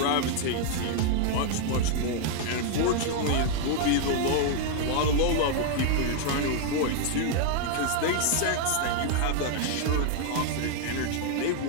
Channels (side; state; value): both; different; correlation 0.00